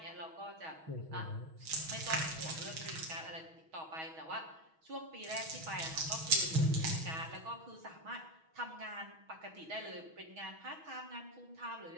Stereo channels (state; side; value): late; left; 6.2 ms